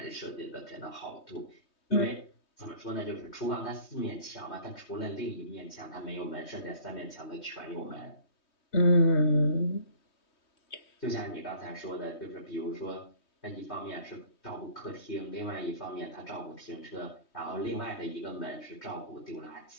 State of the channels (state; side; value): late; right; 3.2 ms